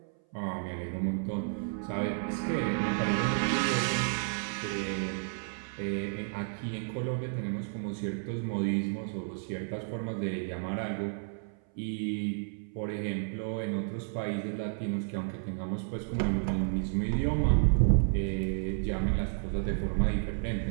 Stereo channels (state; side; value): silent; left; 57 dB below the other